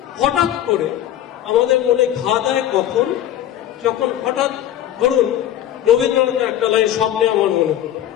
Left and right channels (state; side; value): quieter; right; 11.7 dB